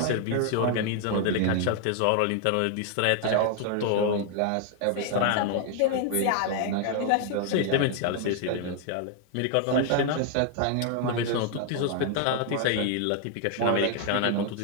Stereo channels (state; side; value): different; both; correlation 0.00